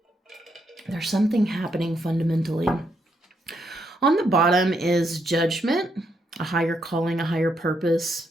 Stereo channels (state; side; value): normal; both; correlation 0.77